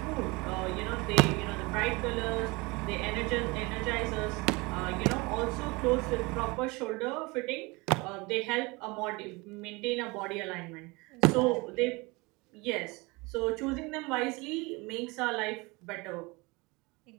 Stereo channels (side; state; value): left; quieter; 25.3 dB